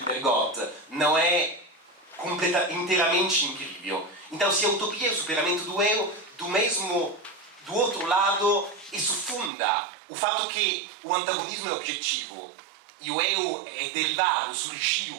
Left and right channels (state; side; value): drops out; left; at 9.5 s